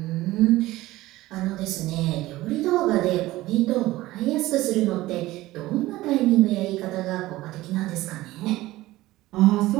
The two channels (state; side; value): quieter; left; 17.5 dB